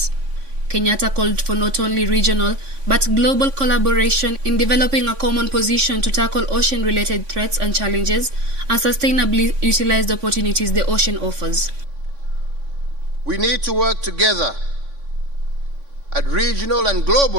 Kenyatta called for not only regional but global collaboration in developing a common position to tackle ocean-related threats and challenges and sustainably utilize the opportunities the ocean offers. We need to work together at regional and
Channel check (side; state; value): left; late; 3.5 ms